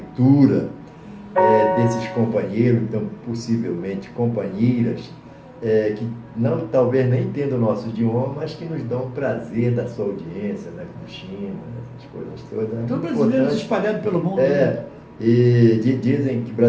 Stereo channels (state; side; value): identical; both; correlation 1.00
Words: desses companheiros, então possivelmente companheiras, que não, talvez nem entendam o nosso idioma, mas que nos dão o prazer da sua audiência, né, como China, essas coisas todas. Então, brasileiros espalhados pelo mundo. Né? E dizem que